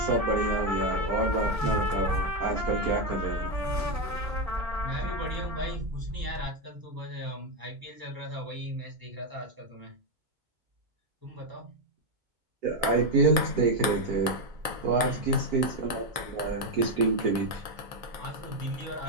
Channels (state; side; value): late; left; 2.2 ms